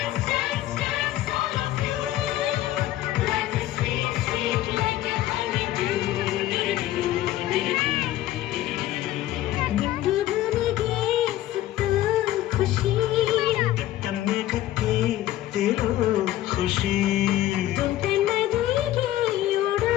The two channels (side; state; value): right; quieter; 14.2 dB